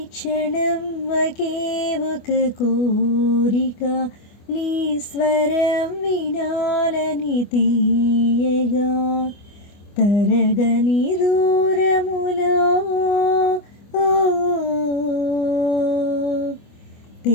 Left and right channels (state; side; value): late; right; 25 ms